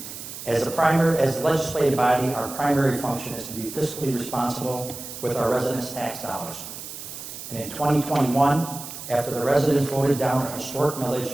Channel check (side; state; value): right; noise; hiss, 11 dB below the sound